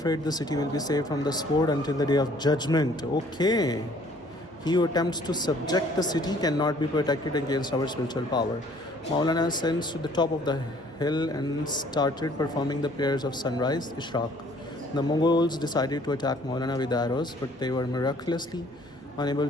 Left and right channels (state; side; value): normal; both; correlation 0.58